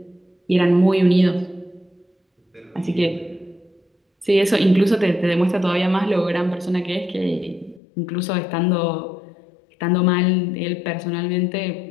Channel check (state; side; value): drops out; right; at 7.8 s